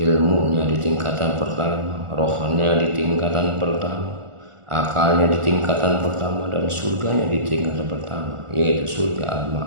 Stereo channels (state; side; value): late; left; 1.4 ms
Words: di tingkatan pertama, rohnya di tingkatan pertama, akalnya di tingkatan pertama, dan surganya di tingkatan pertama, yaitu surga